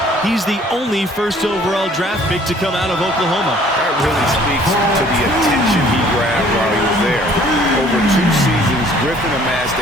he's the only first overall draft pick to come out of Oklahoma. That really speaks to the attention he grabbed while he was there. Over 2 seasons,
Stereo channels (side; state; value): both; normal; correlation 0.56